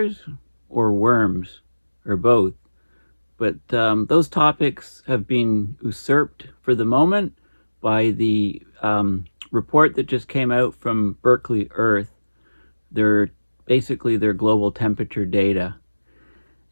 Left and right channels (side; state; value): both; inverted; correlation -1.00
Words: or worms, or both. But those topics have been usurped for the moment by the report that just came out from Berkeley Earth. They're basically their global temperature data.